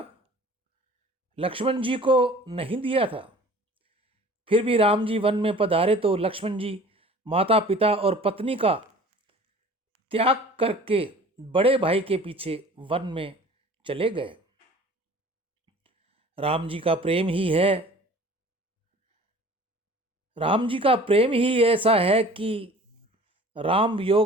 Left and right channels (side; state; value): both; normal; correlation 0.46